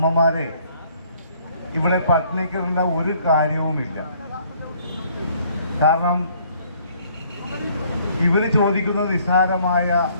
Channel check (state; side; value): inverted; both; correlation -0.62